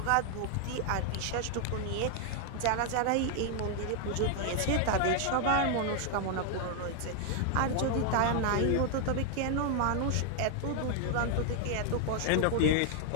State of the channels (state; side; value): different; both; correlation 0.00